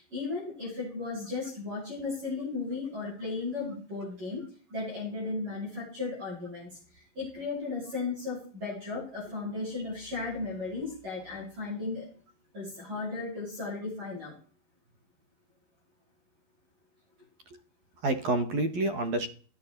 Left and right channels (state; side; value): late; left; 12 ms